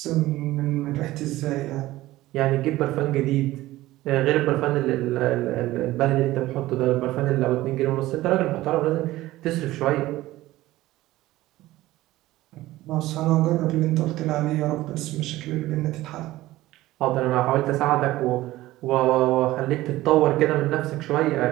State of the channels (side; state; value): left; quieter; 16.8 dB